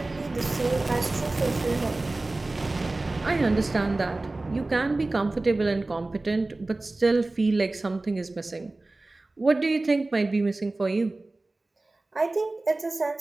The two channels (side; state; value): left; quieter; 3.0 dB